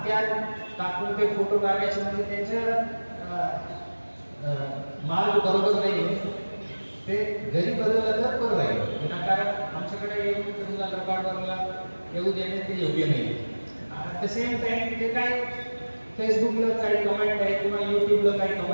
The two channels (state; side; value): inverted; both; correlation -1.00